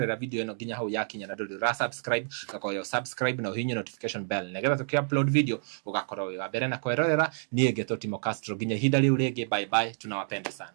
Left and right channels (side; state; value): left; silent; digital silence